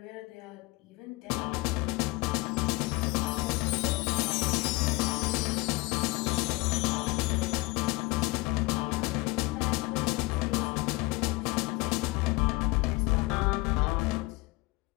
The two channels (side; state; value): right; quieter; 23.3 dB